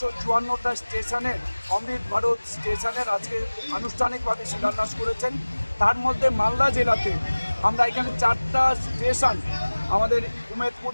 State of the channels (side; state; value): both; inverted; correlation -1.00